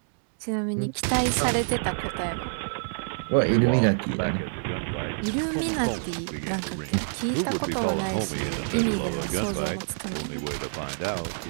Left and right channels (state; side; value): silent; left; digital silence